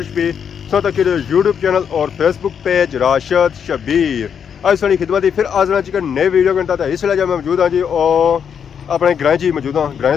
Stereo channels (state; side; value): quieter; right; 7.6 dB